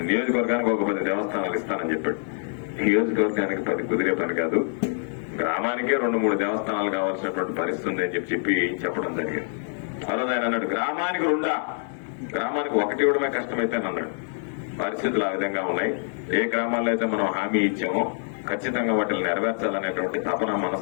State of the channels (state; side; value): silent; right; 61 dB below the other